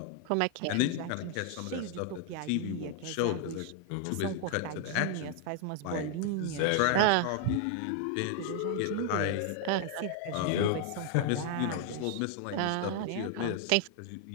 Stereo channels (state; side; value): different; both; correlation 0.00